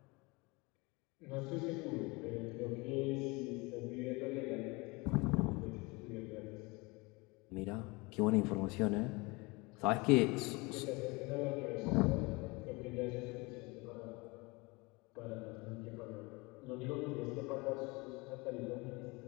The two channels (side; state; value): right; quieter; 25.8 dB